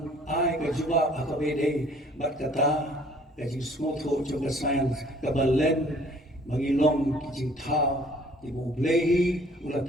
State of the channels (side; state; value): both; normal; correlation 0.56